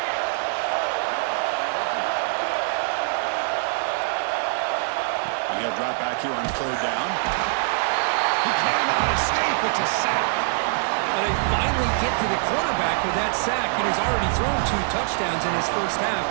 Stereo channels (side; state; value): left; silent; 62 dB below the other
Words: And he'll drop back here on 3rd down. He cannot escape. It's a sack. Well, they finally get to the quarterback with that sack. He's already thrown 2 touchdowns in his first half,